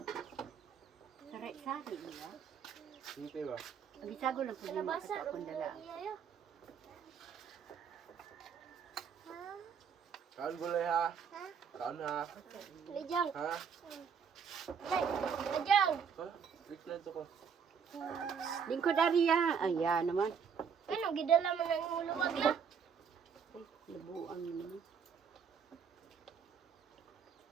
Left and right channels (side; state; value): left; quieter; 6.8 dB